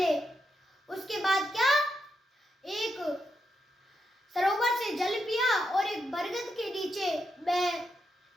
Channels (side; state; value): both; normal; correlation 0.83